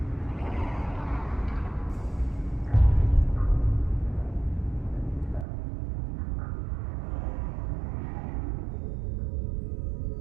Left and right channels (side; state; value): left; drops out; at 5.5 s